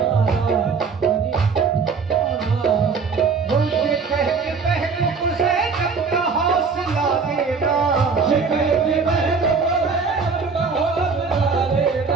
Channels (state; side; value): quieter; left; 5.1 dB